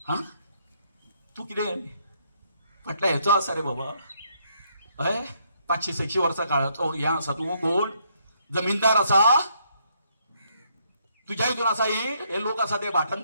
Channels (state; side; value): inverted; both; correlation -0.72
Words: हा, तू कितें फाटल्या हेचो आसा रे बाबा? हय, 500-600 वर्सां काळाचो हे आसा. तू कोण जमीनदार आसा? तुझ्या हितून आसा हे लोक आसा ते भाटान,